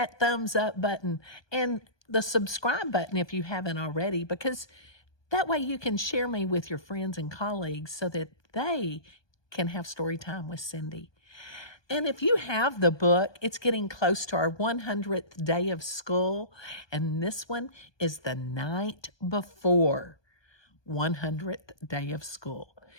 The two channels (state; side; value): late; right; 1.2 ms